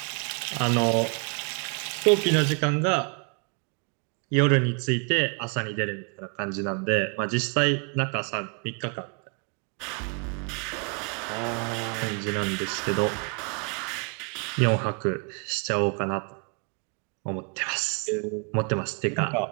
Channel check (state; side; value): quieter; left; 36.8 dB